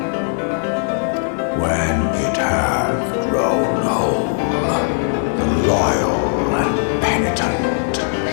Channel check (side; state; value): right; silent; digital silence